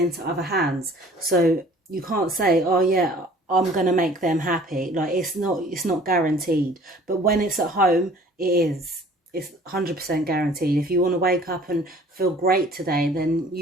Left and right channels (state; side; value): normal; both; correlation 0.51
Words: other hands. So you can't say, oh yeah, I'm going to make them happy. Like, it's not guaranteed. But when it's at home, it is. It's 100% guaranteed. If you want to wake up and feel great today, then